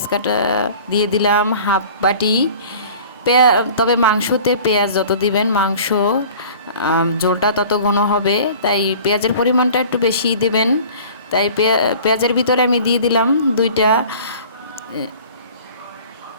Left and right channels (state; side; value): inverted; both; correlation -0.45